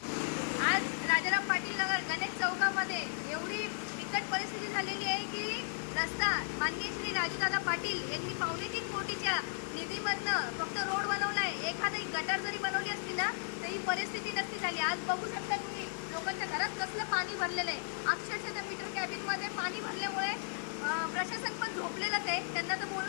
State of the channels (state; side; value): silent; right; 54 dB below the other